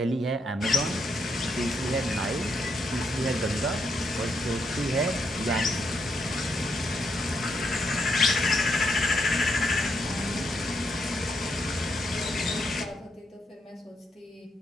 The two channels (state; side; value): normal; both; correlation 0.79